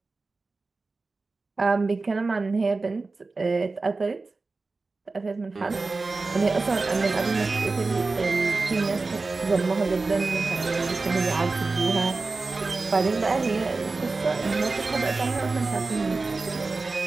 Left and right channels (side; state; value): left; quieter; 3.7 dB